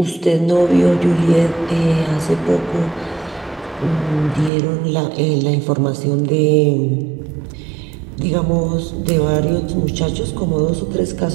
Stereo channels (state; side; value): drops out; left; at 4.5 s